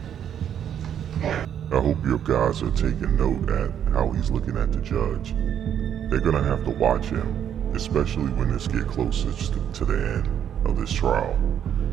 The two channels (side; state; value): left; quieter; 9.3 dB